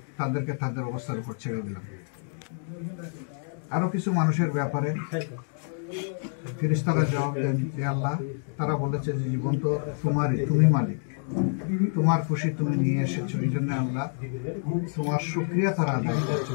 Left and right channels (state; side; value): silent; right; 60 dB below the other